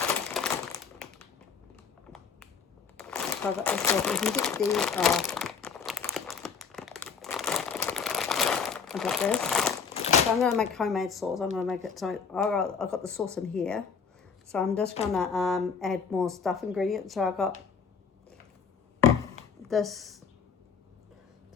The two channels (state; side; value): quieter; right; 6.0 dB